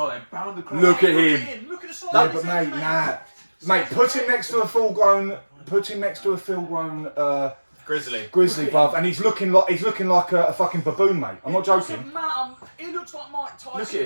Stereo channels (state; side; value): inverted; both; correlation -1.00